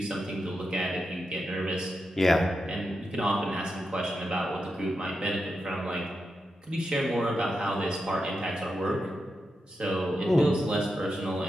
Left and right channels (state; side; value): normal; both; correlation 0.88